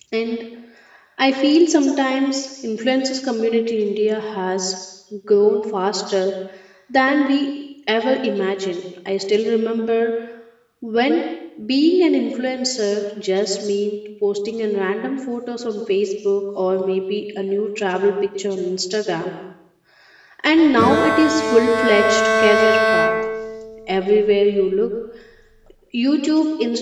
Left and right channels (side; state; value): both; identical; correlation 1.00